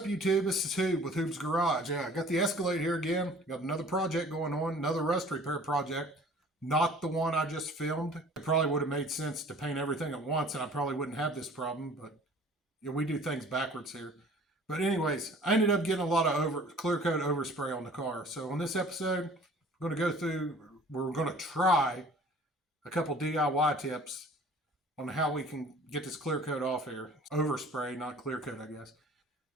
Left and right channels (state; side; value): normal; both; correlation 0.49